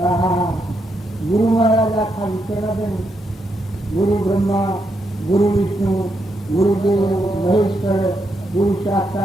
હા ગુરુ મહારાજ આખા વિચારા બેન ગુરુ બ્રહ્મા, ગુરુ વિષ્ણુ, ગુરુદેવ મહેશ્વર, ગુરુ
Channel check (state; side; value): normal; both; correlation 0.80